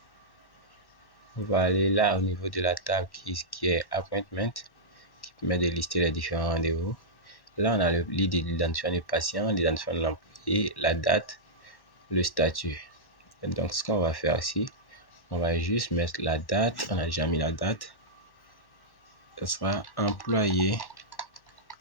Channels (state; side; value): late; right; 1.1 ms